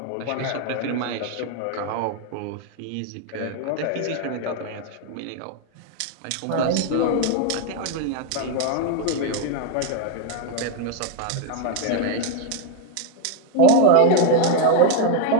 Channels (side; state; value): both; different; correlation 0.00